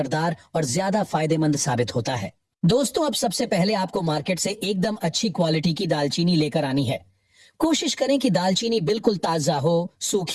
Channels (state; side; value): identical; both; correlation 1.00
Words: और ज्यादा फायदेमंद साबित होता है। दोस्तों, अब सबसे पहले आपको मार्केट से एकदम अच्छी क्वालिटी की दालचीनी लेकर आनी है। कोशिश करें कि दालचीनी बिल्कुल ताजा हो,